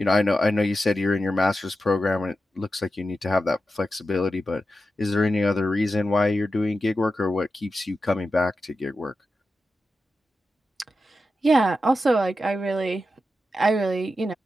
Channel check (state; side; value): normal; both; correlation 0.91